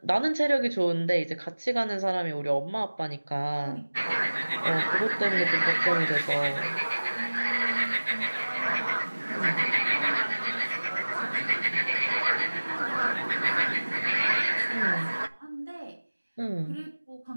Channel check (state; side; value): inverted; both; correlation -1.00